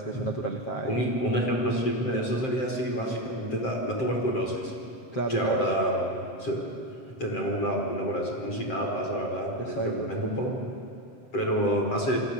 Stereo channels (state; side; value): late; right; 7.6 ms